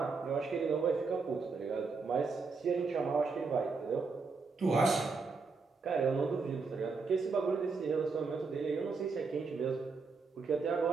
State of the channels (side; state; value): left; quieter; 4.5 dB